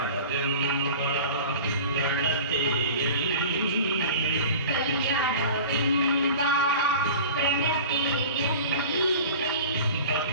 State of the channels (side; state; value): both; inverted; correlation -0.39